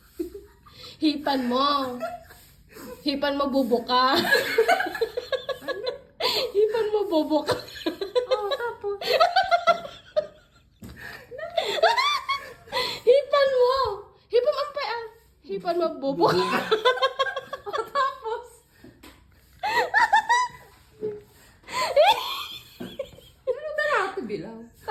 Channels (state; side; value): identical; both; correlation 1.00